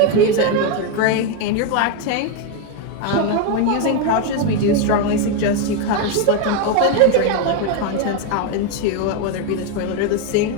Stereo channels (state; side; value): different; both; correlation 0.02